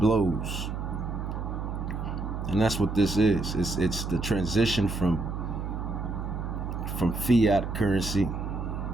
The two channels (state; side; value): noise; right; hum, 4 dB below the sound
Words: And that's what this is. It's the transition from fiat currency,